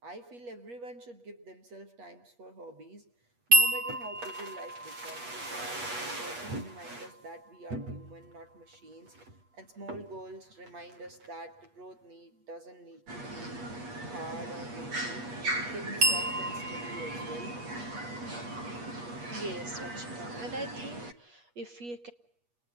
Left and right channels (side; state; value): left; late; 8.3 ms